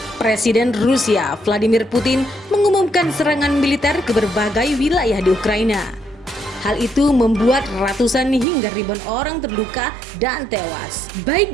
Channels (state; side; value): drops out; left; at 8.5 s